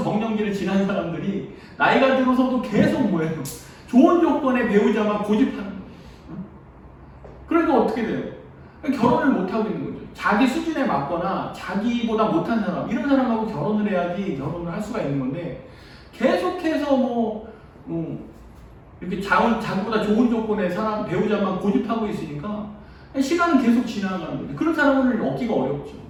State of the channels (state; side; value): identical; both; correlation 1.00